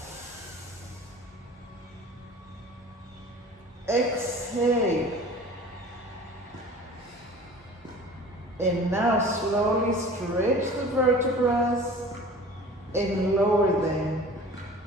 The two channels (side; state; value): both; normal; correlation 0.42